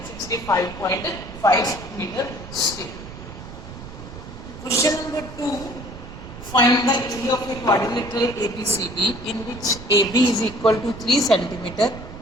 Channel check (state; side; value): noise; right; rumble, 13 dB below the sound